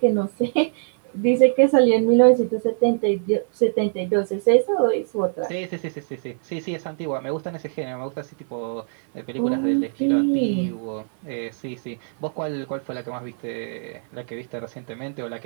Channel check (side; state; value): left; silent; 60 dB below the other